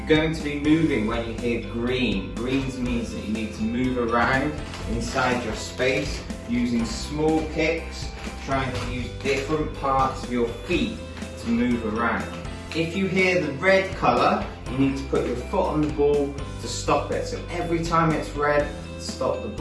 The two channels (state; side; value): identical; both; correlation 1.00